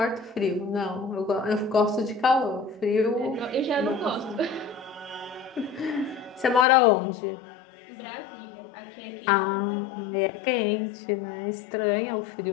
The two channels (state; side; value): drops out; right; at 6.7 s